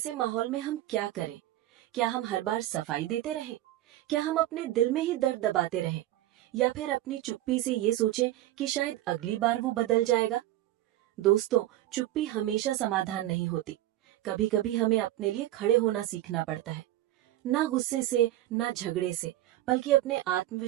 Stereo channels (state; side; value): quieter; left; 14.8 dB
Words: माहौल में हम क्या करें? क्या हम हर बार सफाई देते रहें? क्या हम अपने दिल में ही दर्द दबाते रहें? या फिर अपनी चुप्पी से ये सोचें कि शायद अगली बार वो बदल जाएगा? दोस्तों, चुप्पी हमेशा समाधान नहीं होती। कभी कभी हमें अपने लिए खड़े होना सीखना पड़ता है, ना गुस्से से, ना झगड़े से, बल्कि अपने